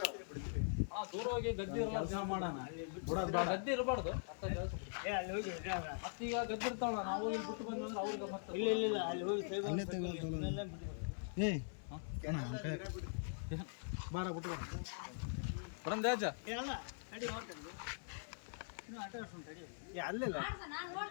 ದೂರವಾಗಿ ಗದ್ದೆ ಕೆಲಸ ಮಾಡೋಣ. ಗದ್ದೆ ಇರಬಾರ್ದು. ಮತ್ತೀಗ ಗದ್ದೆ ಇರ್ತಾವಲ್ಲ, ನಾವು ಇಲ್ಲಿ ಬಿಟ್ಟು ಬಂದ್ರೆ ಅವ್ರಿಗೆ ಮತ್ತೆ ಇಲ್ಲ ಅಲ್ಲಿ ಹೋಗಿ ಅಲ್ಲೇ ತಗೋಲ್ತಲ್ಲ ಏ ಅಣ್ಣ ಬಾರ ಬಿಟ್ಟು ಬರ ಬರಂದೆ ಅಜ್ಜ. ಅಲ್ಲ ತಡಿ ಹೊರಟಲ್ಲಿ ಇನ್ನೂ ಆಟ ಆಡ್ಸೋಣ ತಡಿ ಅಲ್ಲಿಲ್ಲ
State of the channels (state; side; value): silent; right; digital silence